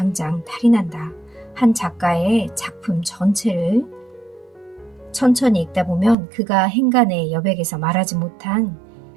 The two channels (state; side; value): drops out; left; at 6.2 s